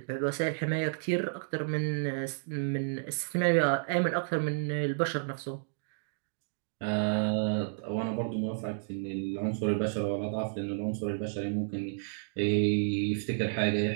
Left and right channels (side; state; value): left; silent; digital silence